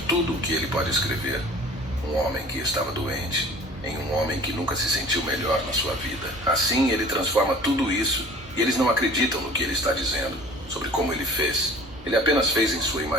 tudo o que ele pode escrever, um homem que estava doente, em um homem que nunca se sentiu melhor na sua vida. Assim ele transforma tudo isso, e eles não acreditam no que ele está dizendo, sobre como ele fez. Ele apenas fez em sua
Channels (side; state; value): both; normal; correlation 0.45